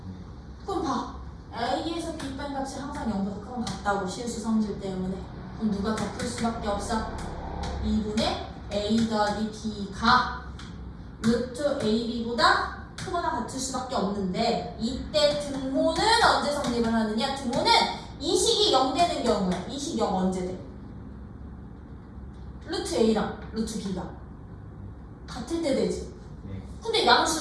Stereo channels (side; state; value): both; identical; correlation 1.00